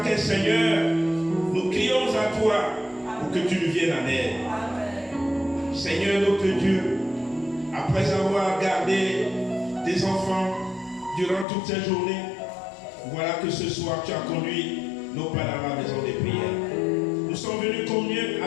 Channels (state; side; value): drops out; right; at 11.5 s